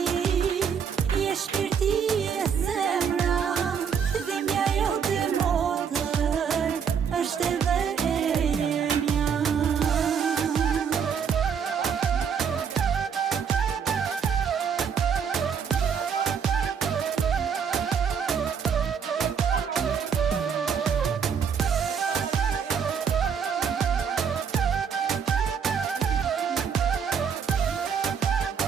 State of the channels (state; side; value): quieter; left; 7.0 dB